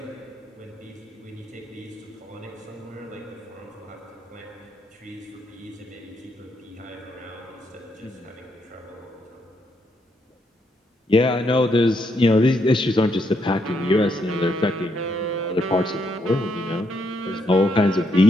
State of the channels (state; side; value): normal; both; correlation 0.77